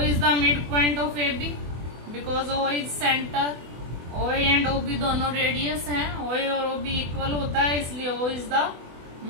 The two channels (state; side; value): late; left; 24 ms